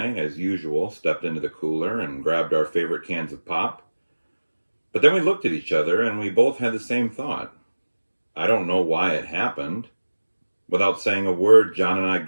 as usual, stepped into the cooler and grabbed our favorite cans of pop. But then we looked at each other and we both had the same thought. I don't know why it happened. Without saying a word, John and I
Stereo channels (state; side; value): inverted; both; correlation -1.00